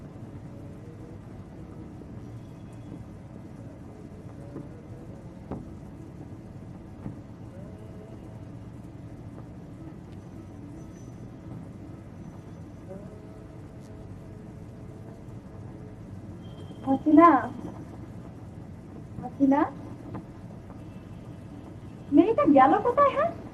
হাসিনা, মেয়েটা গেল কোথায়? হ্যাঁ,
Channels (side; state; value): both; identical; correlation 1.00